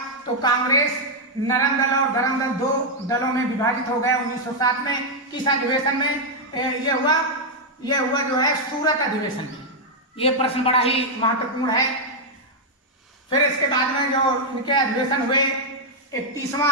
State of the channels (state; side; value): normal; both; correlation -0.02